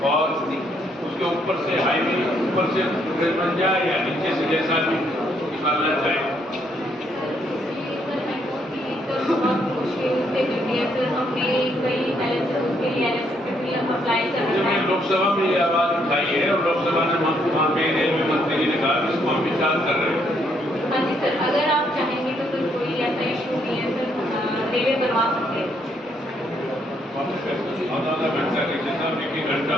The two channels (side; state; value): both; normal; correlation 0.72